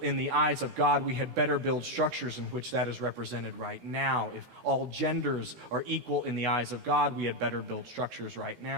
the eyes of God, we had better build structures in which that is represented right now. If all genders are equal in the eyes of God, we had better build structures right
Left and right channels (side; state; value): left; late; 16 ms